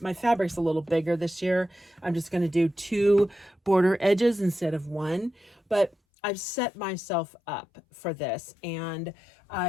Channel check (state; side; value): drops out; right; at 6.0 s